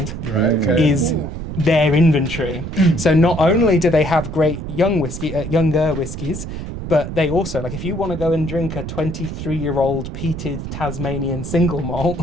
is their inventory. So not only do they have great younger whiskies, but they also, like, if you want to go and drink a 23-year-old peated Tasmanian single malt,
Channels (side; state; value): right; noise; rumble, 7 dB below the sound